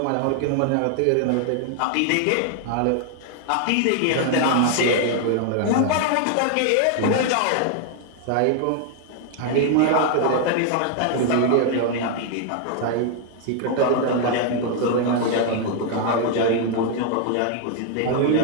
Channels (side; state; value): both; different; correlation 0.00